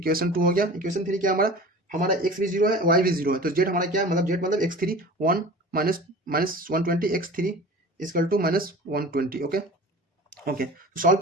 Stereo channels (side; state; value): both; normal; correlation 0.38